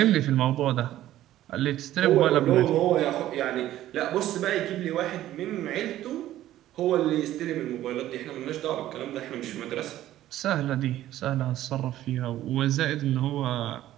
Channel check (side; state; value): left; quieter; 13.6 dB